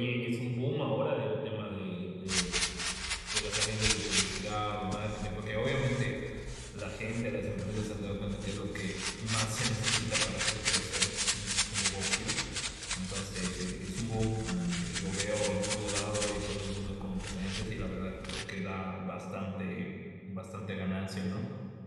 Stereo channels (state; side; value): identical; both; correlation 1.00